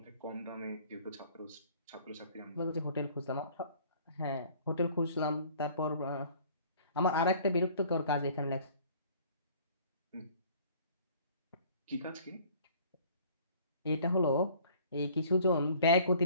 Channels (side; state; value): both; inverted; correlation -0.52